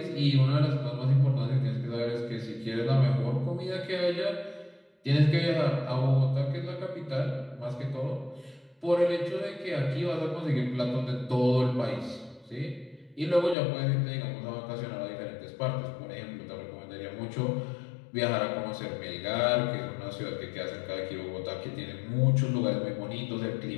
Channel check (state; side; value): drops out; right; at 13.6 s